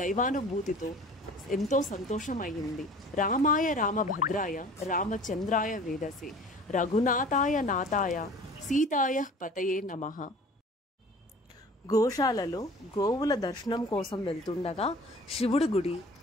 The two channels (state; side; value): normal; both; correlation 0.45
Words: దైవానుభూతితో ఎంతో సంతోషం అయింది. రామాయ రామభద్రాయ రామచంద్రాయ వేదసే రఘునాథాయ నాథాయ సీతాయ పతయే నమః. గోశాలలో గోవుల దర్శనం కోసం వెళ్తుండగా శివుడి గుడి